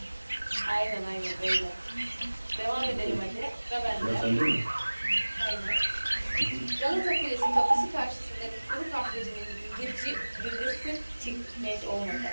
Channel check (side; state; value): both; inverted; correlation -1.00